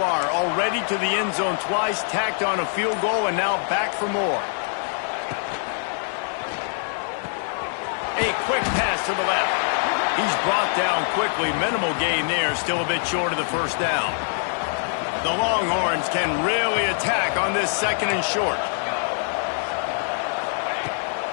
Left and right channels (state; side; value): silent; right; 62 dB below the other